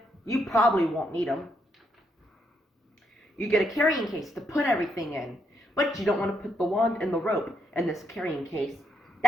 you probably won't need them. You get a carrying case to put everything in, but you don't want to put the wand and the rope in this carrying case.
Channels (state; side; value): normal; both; correlation 0.77